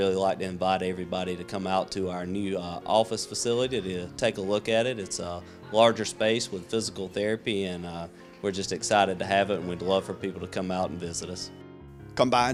like to invite everybody to come out to our new office facility to take a look at it. It's a larger space with physical therapy, and we're just excited to have it, and we'd love for people to come out and visit us. Come by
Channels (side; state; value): both; identical; correlation 1.00